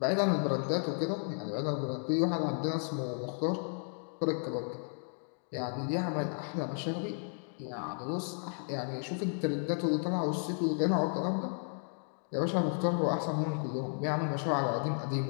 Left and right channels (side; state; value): right; silent; 55 dB below the other